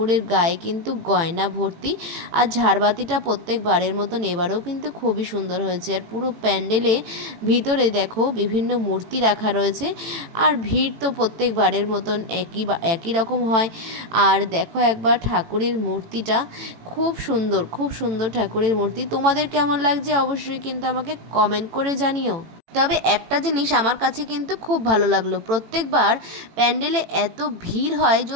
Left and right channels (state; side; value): late; left; 18 ms